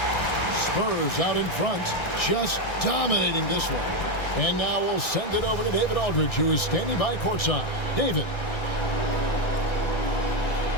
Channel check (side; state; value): right; late; 1.6 ms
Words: Spurs out in front, just dominating this one. And now we'll send it over to David Aldridge, who is standing by courtside. David.